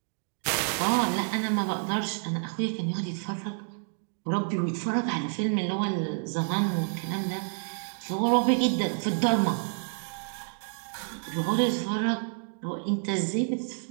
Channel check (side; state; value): left; silent; 59 dB below the other